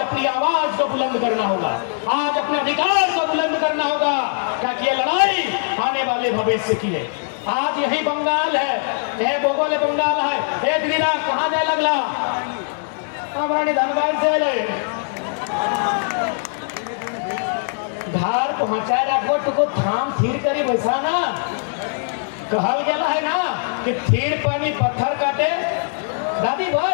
आवाज को बुलंद करना होगा, आज अपने अधिकार को बुलंद करना होगा, ताकि ये लड़ाई आने वाले भविष्य की है। आज यही बंगाल है, यह भोगोले बंगाल है। एक दिन कहाँ जाए लगला हमारा धनबाद से ले घर पहुंचाए रखो तो थाम थीर करी वैसा ना कहल गया है ना कि थीर पानी पत्थर काटे। दादी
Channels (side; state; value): right; silent; digital silence